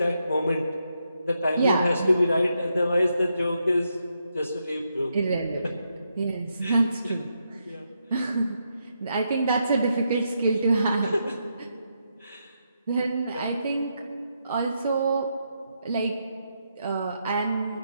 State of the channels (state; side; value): inverted; both; correlation -0.81